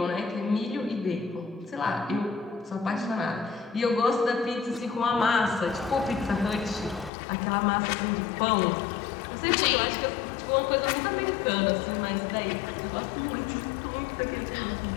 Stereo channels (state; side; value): drops out; right; at 7.1 s